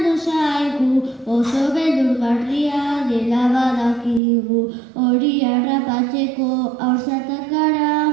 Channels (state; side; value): drops out; left; at 4.2 s